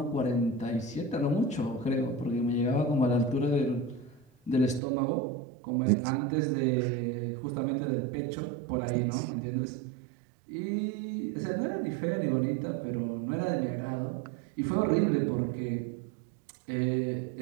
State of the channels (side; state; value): left; drops out; at 4.8 s